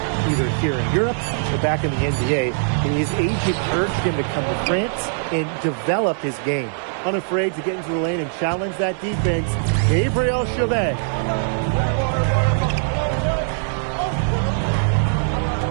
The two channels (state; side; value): silent; left; 65 dB below the other